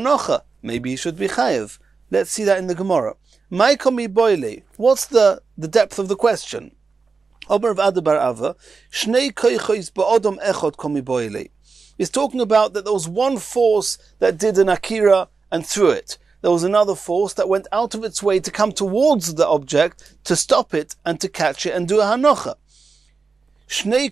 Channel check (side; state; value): left; quieter; 4.7 dB